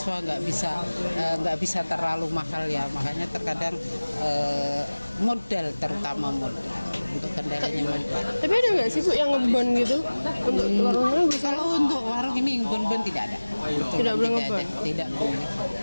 nggak bisa terlalu mahal ya. Makanya terkadang modal, terutama modal. Untuk kendalanya modal. Tapi ada nggak sih, Bu, yang ngebon gitu? Untuk warungnya bisa? Kalau untuk warung ini bon-bon tidak ada. Tidak boleh ngebon? Tidak boleh.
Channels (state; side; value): inverted; both; correlation -1.00